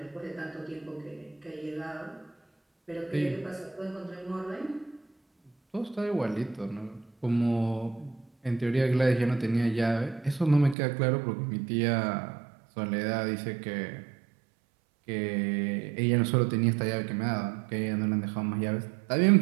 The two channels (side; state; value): left; drops out; at 10.8 s